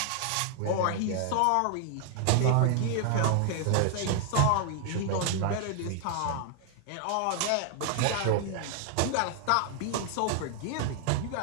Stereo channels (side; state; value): both; different; correlation 0.00